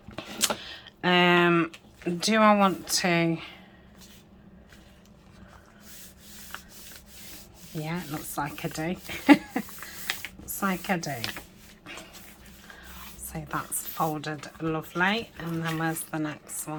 Do I want to... Yeah, it looks like I do. Looks like I do. So that's folded lovely. And then where's the next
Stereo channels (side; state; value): both; identical; correlation 1.00